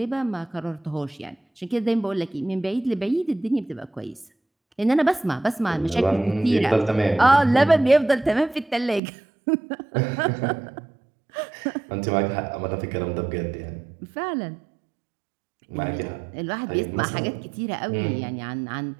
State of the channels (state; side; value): drops out; left; at 9.0 s